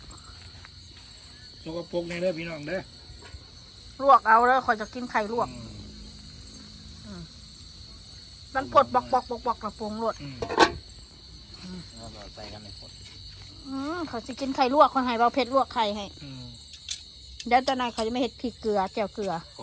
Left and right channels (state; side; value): identical; both; correlation 1.00